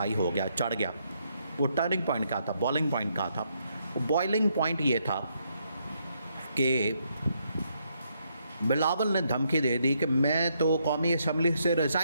हो गया, चढ़ गया, वो टर्निंग पॉइंट का था, बॉइलिंग पॉइंट का था। बॉइलिंग पॉइंट ये था कि बिलावल ने धमकी दे दी कि मैं तो कौमी असम्बली से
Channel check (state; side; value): inverted; both; correlation -0.76